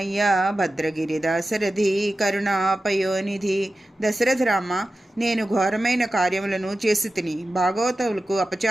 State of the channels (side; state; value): both; normal; correlation 0.93